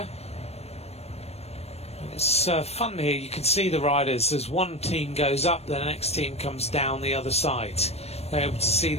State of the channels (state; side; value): late; right; 0.31 ms